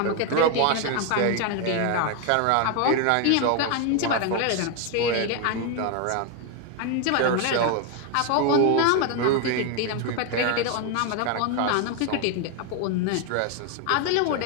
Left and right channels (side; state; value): both; different; correlation 0.01